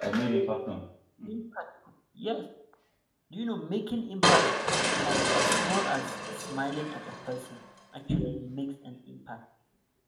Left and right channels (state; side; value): identical; both; correlation 1.00